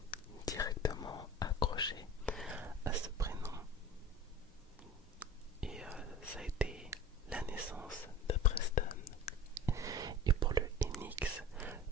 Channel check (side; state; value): both; normal; correlation 0.36